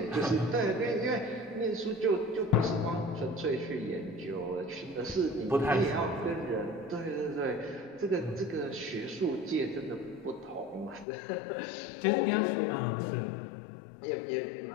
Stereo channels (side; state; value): right; drops out; at 11.1 s